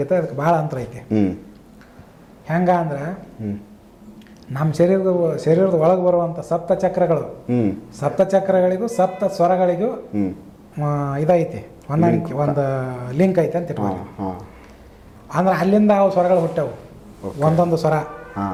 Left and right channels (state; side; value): identical; both; correlation 1.00